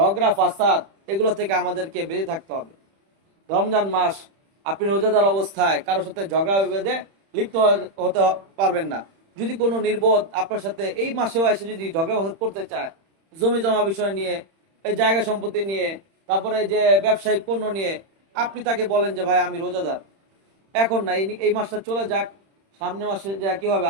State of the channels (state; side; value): late; left; 31 ms